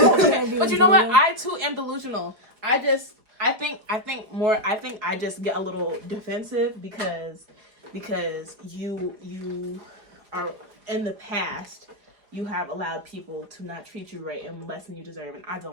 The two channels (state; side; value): late; left; 4.9 ms